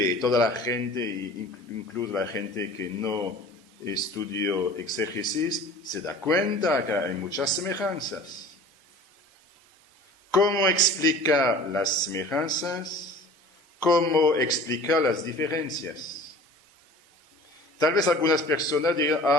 y toda la gente, incluso la gente que no estudió exégesis, se da cuenta que hay muchas semejanzas. ¿Cómo explicar las semejanzas? ¿Cómo explicar las diferencias? Tal vez algunas personas digan,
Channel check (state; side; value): normal; both; correlation 0.43